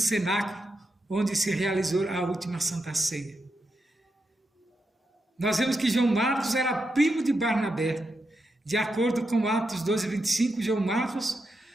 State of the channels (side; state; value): both; normal; correlation 0.85